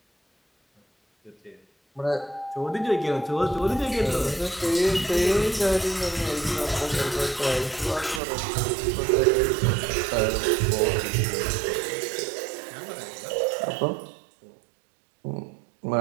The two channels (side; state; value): left; drops out; at 8.2 s